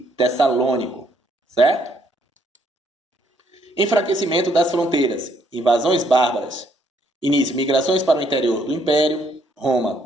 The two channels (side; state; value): both; normal; correlation 0.69